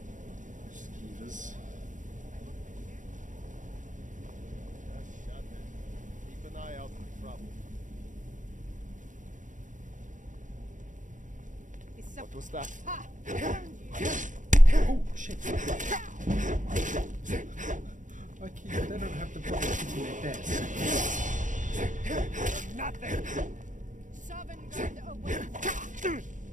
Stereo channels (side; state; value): left; late; 0.37 ms